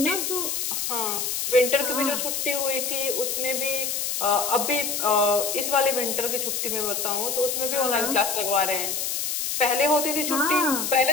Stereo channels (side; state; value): left; noise; hiss, 1 dB below the sound